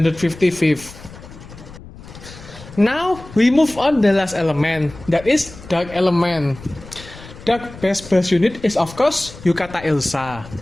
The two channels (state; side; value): noise; left; rumble, 17 dB below the sound